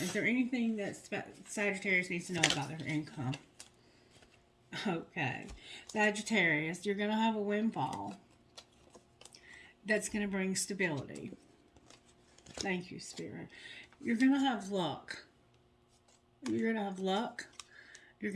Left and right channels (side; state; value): both; identical; correlation 1.00